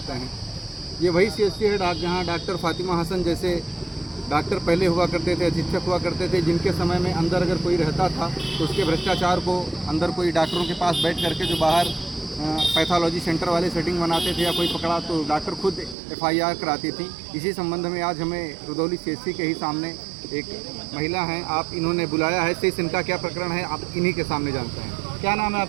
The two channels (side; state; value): left; drops out; at 16.0 s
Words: हैं। ये वही सीएचसी है जहाँ डॉक्टर फातिमा हसन जैसे डॉक्टर पहले हुआ करते थे, अधीक्षक हुआ करते थे, जिनके समय में अंदर अगर कोई रहता था तो उसके भ्रष्टाचार को अंदर कोई डॉक्टरों के पास बैठ करके जो बाहर पैथोलॉजी सेंटर वाले सेटिंग बनाते थे या कोई पकड़ा तो डॉक्टर खुद FIR कराती थी। इसी संबंध में आज हमें रुदौली सीएचसी के ही सामने एक महिला हैं, आप इन्होंने बुलाया है। शेष इनका क्या प्रकरण है आप इन्हीं के सामने जानते हैं। क्या नाम है